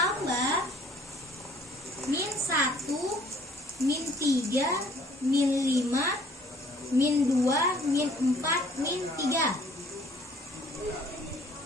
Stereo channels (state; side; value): normal; both; correlation 0.57